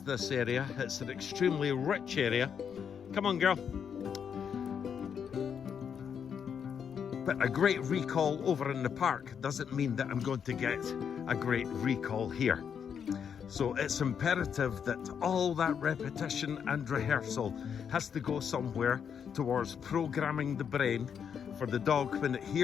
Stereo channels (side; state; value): right; quieter; 7.5 dB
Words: this area. It's an extremely rich area. Come on, girl. But a great recall over in the park doesn't mean that I'm going to get a great recall here. So it's imperative that all that repetition and rehearsal has to go somewhere towards programming the brain for the dog when it